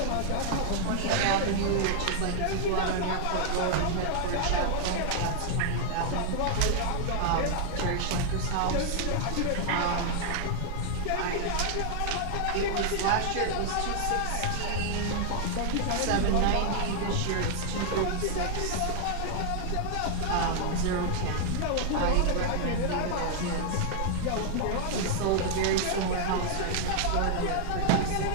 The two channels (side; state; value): both; different; correlation 0.00